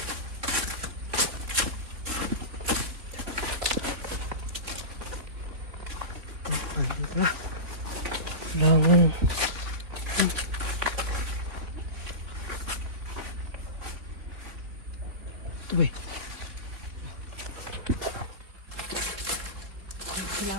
Langan. Ito ba?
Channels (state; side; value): late; left; 3.5 ms